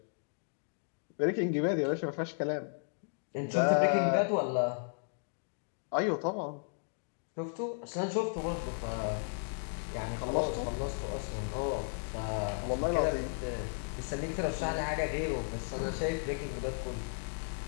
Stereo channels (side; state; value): right; silent; digital silence